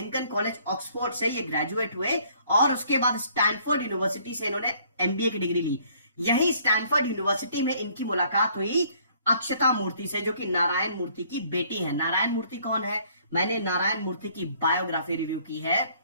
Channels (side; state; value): both; inverted; correlation -0.61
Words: कॉलेज ऑक्सफोर्ड से ये ग्रेजुएट हुए, और उसके बाद स्टैनफोर्ड यूनिवर्सिटी से इन्होंने एमबीए की डिग्री ली। यही स्टैनफोर्ड यूनिवर्सिटी में इनकी मुलाकात हुई अक्षता मूर्ति से, जो कि नारायण मूर्ति की बेटी है। नारायण मूर्ति कौन है? मैंने नारायण मूर्ति की बायोग्राफी रिव्यू की है।